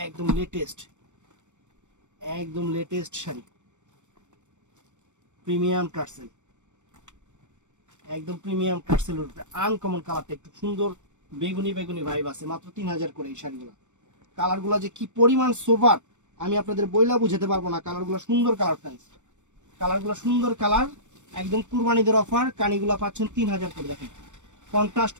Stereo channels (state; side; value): late; left; 0.84 ms